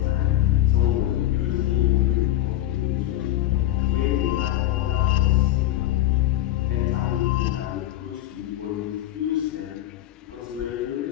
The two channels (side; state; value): right; quieter; 14.4 dB